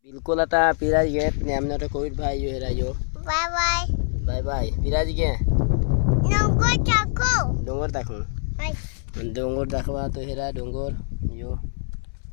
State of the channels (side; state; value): right; silent; 62 dB below the other